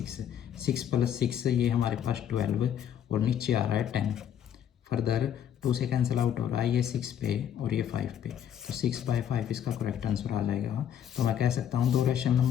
6 + 6 ये हमारे पास 12, और नीचे आ रहा है 10। फर्दर 2 से कैंसिल आउट हो रहा है, ये 6 पे और ये 5 पे, तो 6/5 इसका करेक्ट आंसर आ जाएगा। तो मैं कह सकता हूँ 2 रैशनल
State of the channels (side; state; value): right; quieter; 9.5 dB